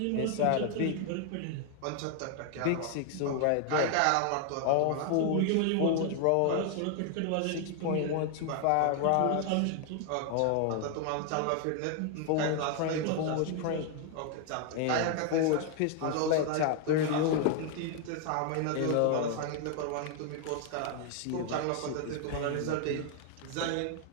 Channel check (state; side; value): different; both; correlation 0.00